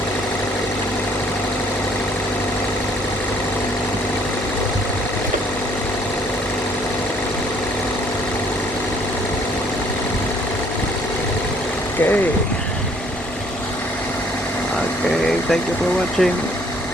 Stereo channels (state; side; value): normal; both; correlation 0.61